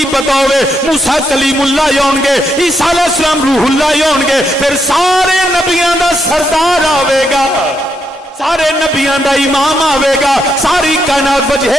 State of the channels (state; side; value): normal; both; correlation 0.79